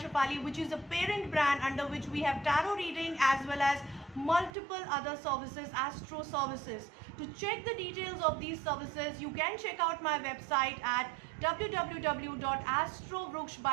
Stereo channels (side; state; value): left; drops out; at 4.5 s